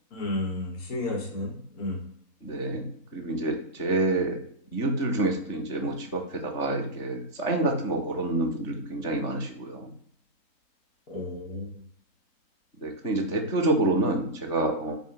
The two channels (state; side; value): late; right; 3.4 ms